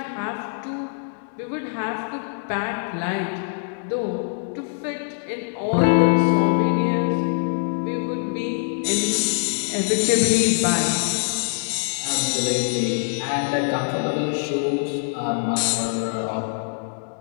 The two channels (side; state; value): right; silent; digital silence